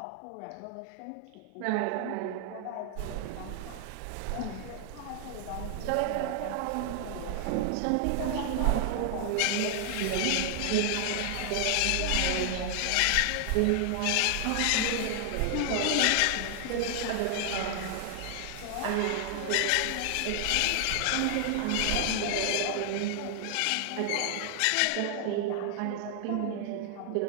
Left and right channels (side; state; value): both; different; correlation 0.00